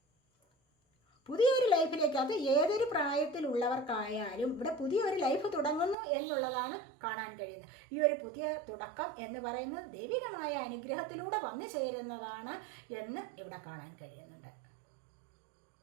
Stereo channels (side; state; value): left; drops out; at 6.0 s